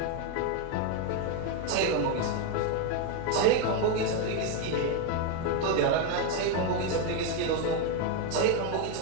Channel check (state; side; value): different; both; correlation 0.01